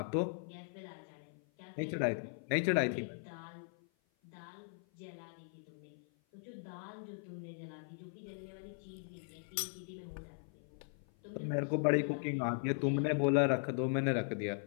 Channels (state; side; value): silent; right; 52 dB below the other